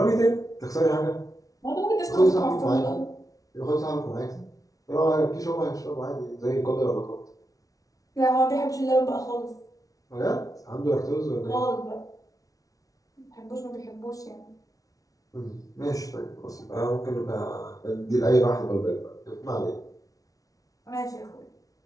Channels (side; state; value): right; late; 0.18 ms